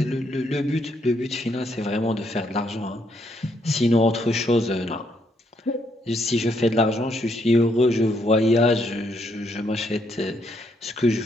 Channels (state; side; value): normal; both; correlation 0.74